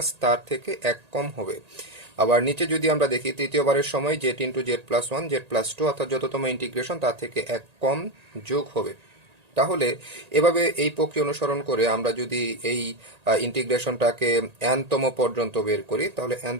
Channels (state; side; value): late; left; 1.9 ms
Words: তার থেকে এক কম হবে। আবার নিচে যদি আমরা দেখি, তৃতীয়বারের সময় z into z plus one z plus two, অর্থাৎ যততম ইন্টিগ্রেশন তার থেকে এক কম যোগ হবে। তাহলে এভাবে এই প্রক্রিয়া অনুসরণ করে আমরা যদি এই ইন্টিগ্রেশনটাকে n-তম পর্যন্ত বের করি, তাহলে